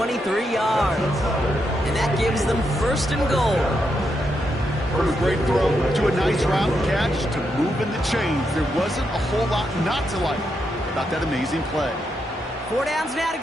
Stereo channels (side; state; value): both; normal; correlation 0.82